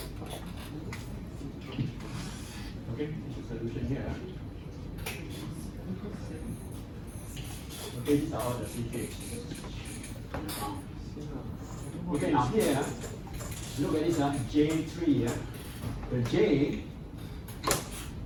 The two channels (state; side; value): identical; both; correlation 1.00